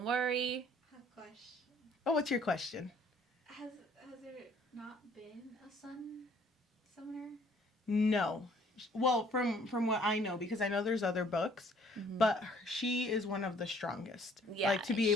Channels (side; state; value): both; normal; correlation 0.59